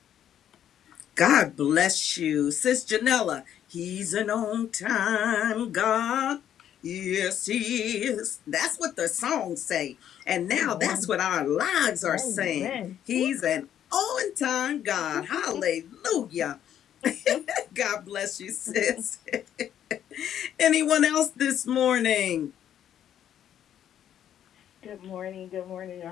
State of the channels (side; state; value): right; quieter; 10.2 dB